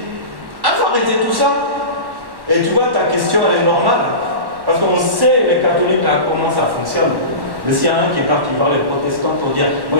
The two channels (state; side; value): late; left; 1.1 ms